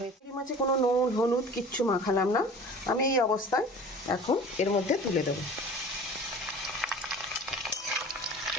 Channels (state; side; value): normal; both; correlation 0.42